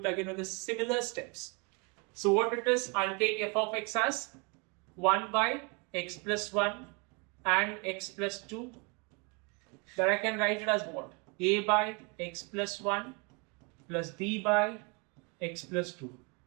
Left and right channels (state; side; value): quieter; left; 32.2 dB